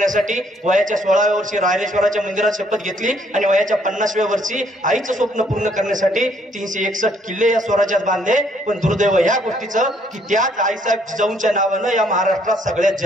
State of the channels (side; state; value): both; normal; correlation 0.66